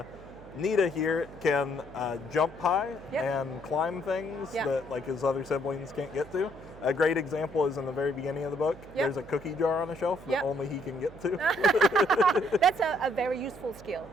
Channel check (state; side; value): noise; right; hum, 19 dB below the sound